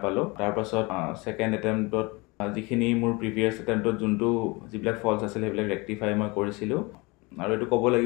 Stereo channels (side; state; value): right; quieter; 25.9 dB